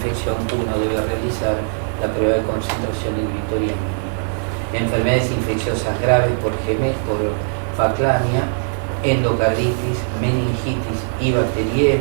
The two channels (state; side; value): silent; left; 62 dB below the other